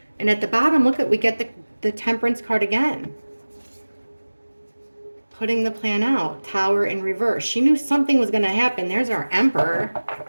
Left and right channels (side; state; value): both; inverted; correlation -1.00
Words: And at the bottom, look at, we get the Temperance card again. Putting the plan out, Tower in reverse. She knew something was going to happen. There's our Emperor.